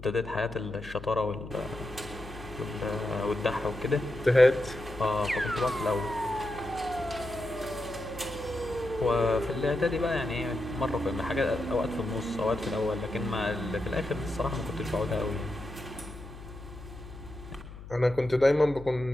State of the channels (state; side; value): noise; left; hum, 14 dB below the sound